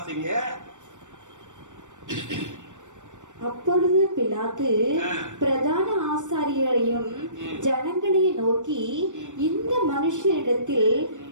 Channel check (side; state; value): left; late; 0.85 ms